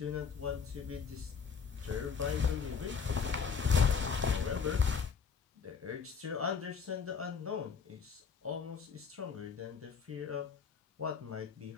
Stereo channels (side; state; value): right; quieter; 5.9 dB